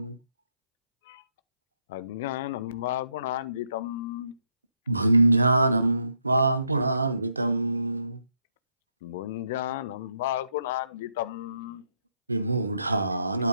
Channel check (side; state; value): both; inverted; correlation -0.78